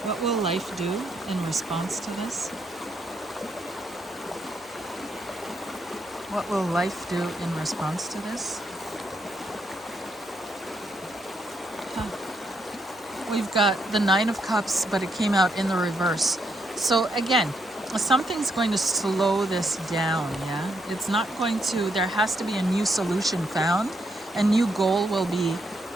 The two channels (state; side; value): normal; both; correlation 0.77